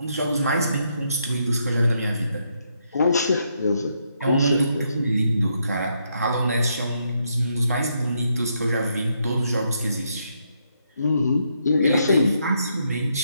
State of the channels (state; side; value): inverted; both; correlation -0.77